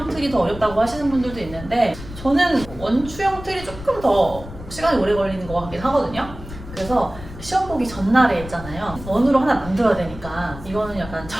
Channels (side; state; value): left; noise; rumble, 13 dB below the sound